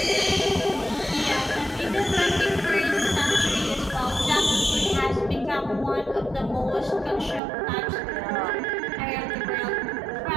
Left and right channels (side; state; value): left; drops out; at 7.4 s